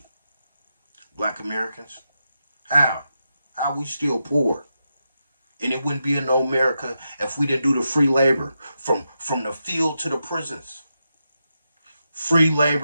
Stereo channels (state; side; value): inverted; both; correlation -0.87